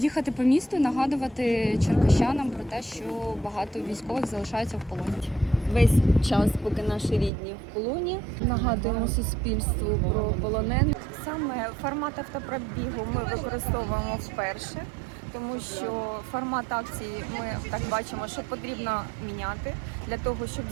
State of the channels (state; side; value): drops out; left; at 7.3 s